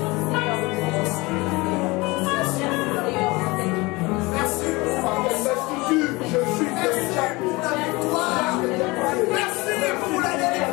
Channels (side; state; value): right; quieter; 23.5 dB